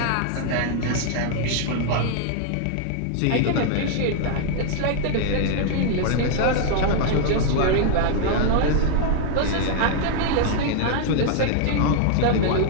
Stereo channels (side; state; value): both; different; correlation 0.00